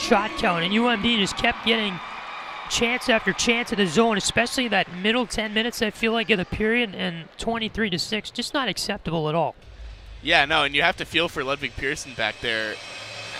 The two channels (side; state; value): both; identical; correlation 1.00